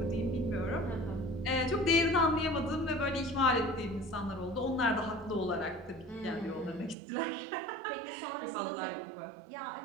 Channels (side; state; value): left; drops out; at 7.0 s